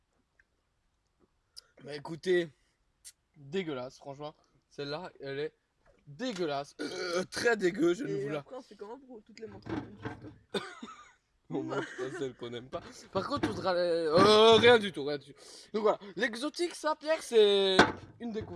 Bah écoutez, dégueulasse, franchement. Celle-là, elle est dégueulasse. Très dégueu, je ne Et vous la après, on fait comment pour toutes les montrer? on montre pas celle qu'on aime pas. Par contre, on voudra rien du tout, rien du tout. Donc voilà, l'exotique, ça, Pierre, c'est une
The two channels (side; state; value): both; identical; correlation 1.00